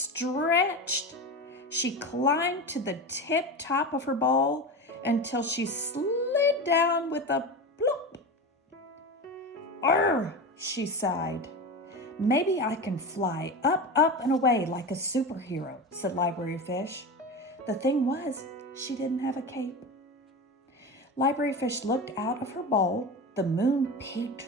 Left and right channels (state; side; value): normal; both; correlation 0.25